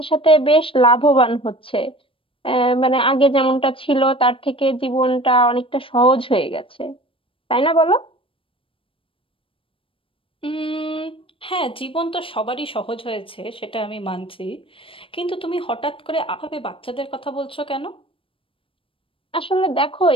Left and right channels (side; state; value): right; late; 0.26 ms